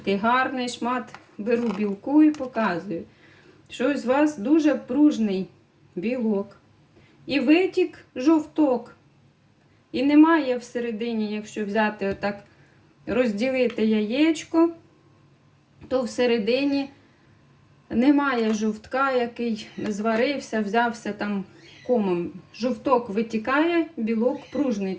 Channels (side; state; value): both; identical; correlation 1.00